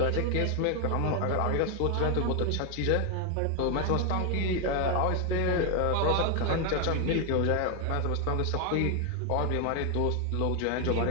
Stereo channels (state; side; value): different; both; correlation 0.00